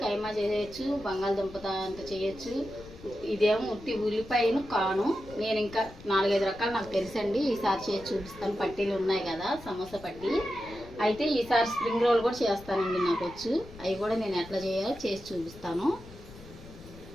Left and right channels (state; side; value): noise; left; rumble, 18 dB below the sound